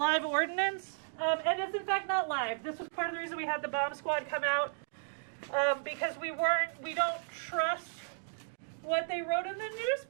ordnance. And it's in fact not live. This was part of the reason we had the bomb squad come out, because we don't trust what they wrote in the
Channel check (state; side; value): silent; left; digital silence